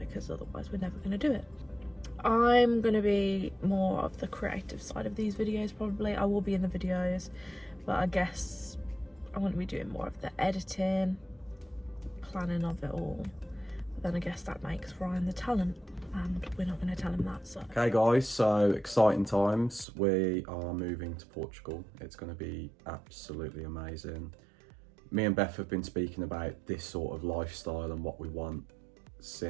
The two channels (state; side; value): drops out; left; at 19.9 s